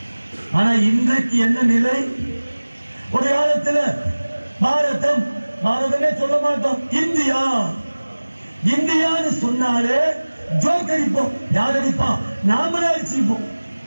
ஆனா இன்றைக்கு என்ன நிலை? ஒரு காலத்துல பாரதமே சொல்ல மாட்டோம், இந்தியா இந்தியான்னு சொன்னாலே ஜோக் அடிப்போம். யார் அடிப்பான்? நாமளே அடிச்சுப்போம்.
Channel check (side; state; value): both; inverted; correlation -1.00